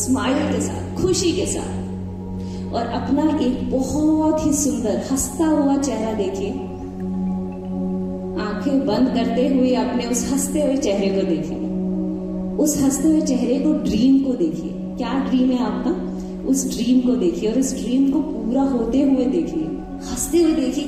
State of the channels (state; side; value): identical; both; correlation 1.00